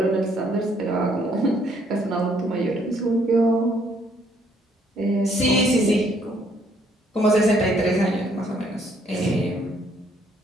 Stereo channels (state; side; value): normal; both; correlation 0.67